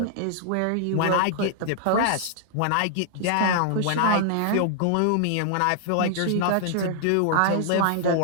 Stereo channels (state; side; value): different; both; correlation -0.01